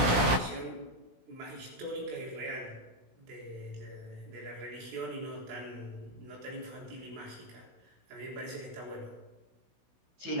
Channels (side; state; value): left; late; 16 ms